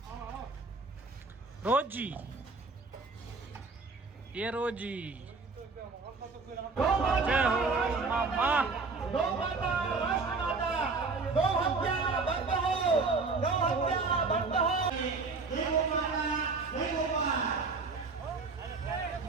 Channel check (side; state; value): left; quieter; 4.2 dB